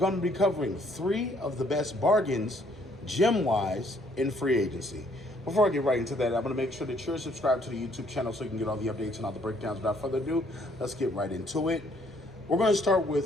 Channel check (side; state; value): both; normal; correlation 0.65